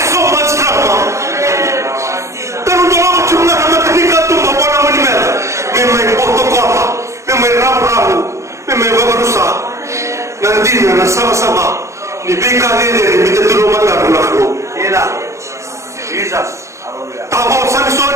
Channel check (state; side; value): late; left; 0.14 ms